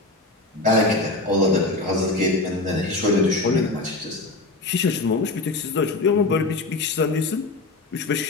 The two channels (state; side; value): quieter; right; 3.1 dB